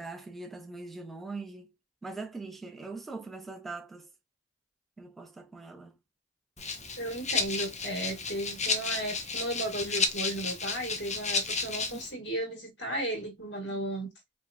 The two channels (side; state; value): both; normal; correlation 0.02